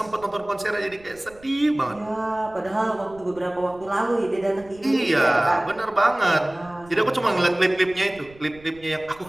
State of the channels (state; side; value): noise; right; rumble, 24 dB below the sound